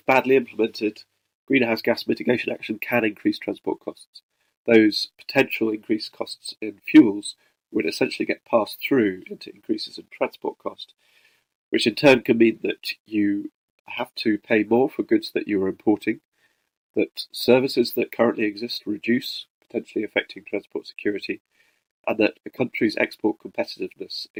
badly implemented, greenhouse gas mitigation action can increase transport costs. Those potential increased costs in fuels would essentially get passed through into increases in transport cost, which in turn can mean that you have to pay more for goods that you are importing, that services that currently exist reduce, potentially affecting transport security, and that a country's export competitiveness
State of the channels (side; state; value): both; identical; correlation 1.00